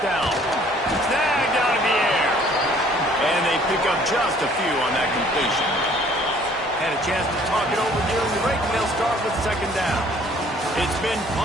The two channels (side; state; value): both; normal; correlation 0.57